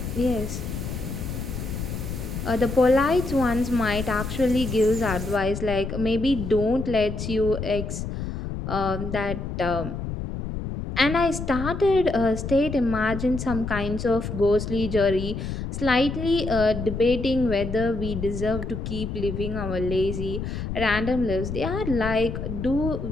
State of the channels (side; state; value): left; noise; rumble, 5 dB below the sound